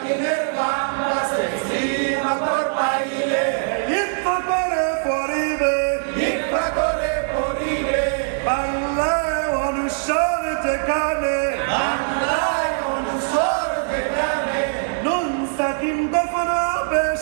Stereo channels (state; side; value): silent; left; digital silence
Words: বাম পাশে সিন অক্ষর পাইলে ইকফা করে পড়িবে ইকফা করে পড়িবে বাংলায় অনুসার যেখানে বাংলায় অনুসর যেখানে নুন সাকিন দফন হবে